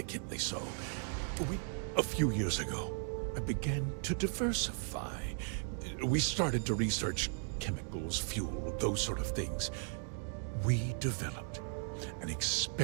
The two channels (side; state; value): left; silent; 53 dB below the other